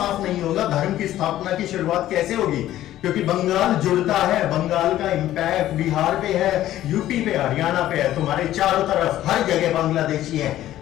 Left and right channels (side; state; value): right; quieter; 13.5 dB